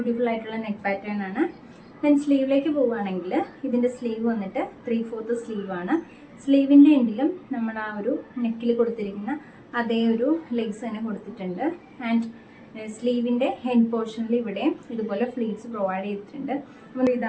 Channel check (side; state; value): both; identical; correlation 1.00